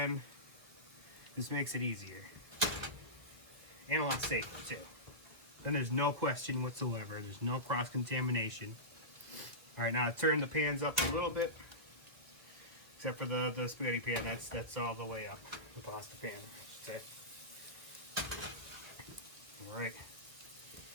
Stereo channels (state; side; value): late; left; 1.9 ms